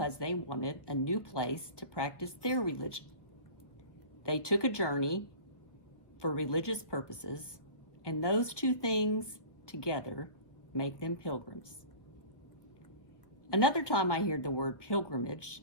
they wanted a new place to practice their religion. They took a journey for religious purposes, and those two things together make them pilgrims. Another time I hear the word pilgrimage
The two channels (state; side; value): late; right; 1.1 ms